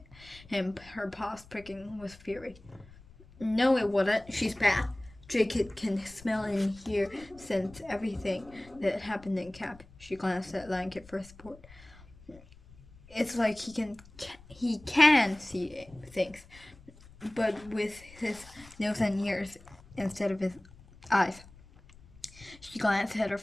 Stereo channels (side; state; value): left; noise; rumble, 22 dB below the sound